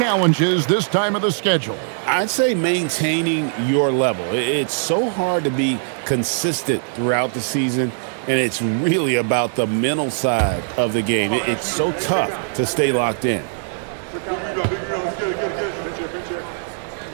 this time of the schedule? I'd say maintaining your level. It's so hard to be consistent throughout the season, and it's really about the mental side of the game. It's so tough to stay locked in.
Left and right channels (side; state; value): left; silent; 65 dB below the other